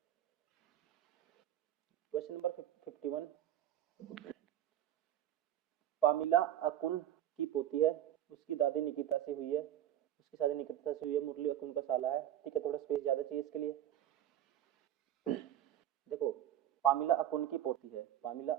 क्वेश्चन नंबर 51, पामिला अकुन की पोती है, उसकी दादी निकिता से हुई है, उसकी शादी निकिता से हुई है, मुरली अकुन का साला है, ठीक है, थोड़ा स्पेस ज्यादा चाहिए इसके लिए। देखो पामिला अकुन की पोती है, पामिला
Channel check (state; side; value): quieter; left; 11.8 dB